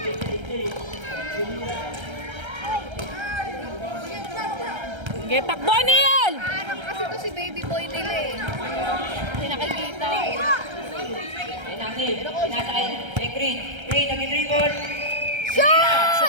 Okay, takbo, Neil! Parang kasi to si baby boy nila eh. Hindi nakikita eh. Ayun ang Neil. Pinasa kay Green. Green, nag-dribble.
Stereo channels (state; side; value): late; left; 1.3 ms